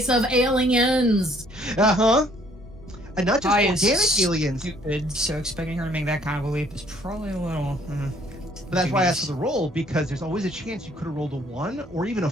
of aliens. Uh-huh. And not just I organic aliens. Stupid, so expecting her to make that kind of a leap is probably a little... But that's why I asked for the roll, because there's always a chance you could have rolled a 1 or even a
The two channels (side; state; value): both; normal; correlation 0.62